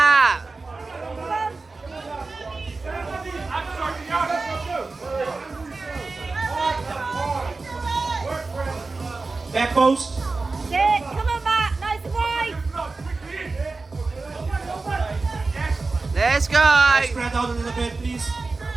Back post. Sit. Come on, Matt. Nice and wide. Let's go. Spread out a little bit, please.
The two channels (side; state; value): left; quieter; 3.8 dB